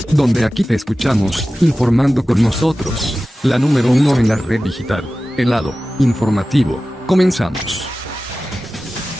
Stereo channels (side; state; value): both; normal; correlation 0.95